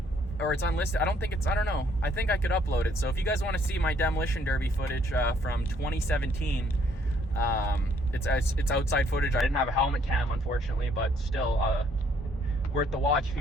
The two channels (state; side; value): normal; both; correlation 0.66